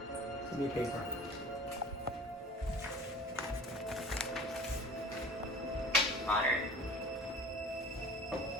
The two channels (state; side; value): normal; both; correlation 0.43